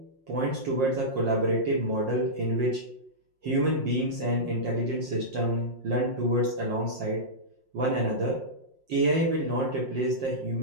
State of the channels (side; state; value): left; late; 5.6 ms